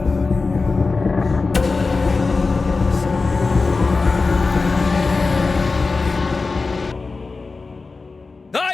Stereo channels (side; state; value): right; quieter; 4.0 dB